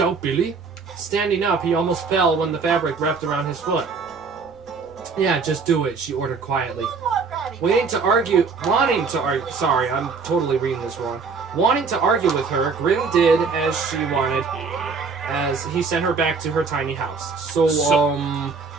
Billy?" Standing up, he almost fell when the fabric wrapped around his foot. "Yeah, just do it," she ordered quietly. Wanting to argue with her, Grim did as she wanted, as he sent her back to her tiny house. So,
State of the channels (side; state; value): left; quieter; 4.9 dB